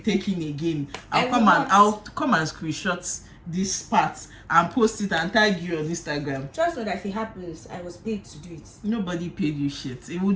in again, I'll come and screenshot this part and post it and tag you on Instagram. Just know that if it happens, I was paid to do it. Nobody paid you shit. It will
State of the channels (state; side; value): identical; both; correlation 1.00